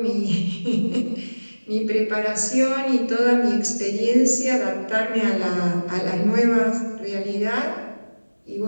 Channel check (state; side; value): inverted; both; correlation -1.00